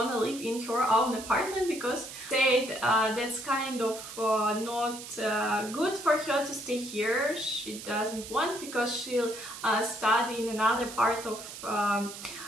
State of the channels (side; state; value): right; noise; hiss, 12 dB below the sound